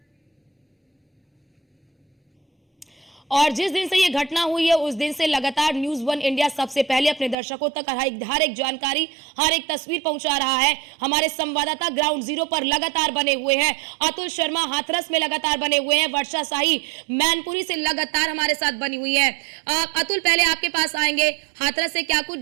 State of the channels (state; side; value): drops out; left; at 7.4 s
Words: और जिस दिन से ये घटना हुई है उस दिन से लगातार न्यूज़ 1 इंडिया सबसे पहले अपने दर्शकों तक हर एक जानकारी, हर एक तस्वीर पहुंचा रहा है। हमारे संवाददाता ग्राउंड जीरो पर लगातार बने हुए हैं, अतुल शर्मा हाथरस में लगातार बने हुए हैं, वर्षा शाही मैनपुरी से लगातार हमारे साथ बनी हुई है। अतुल, पहले आपके पास आएंगे, हाथरस से क्या कुछ